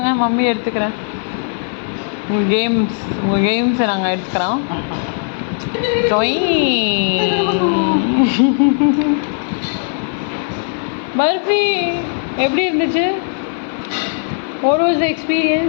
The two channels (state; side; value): silent; right; 57 dB below the other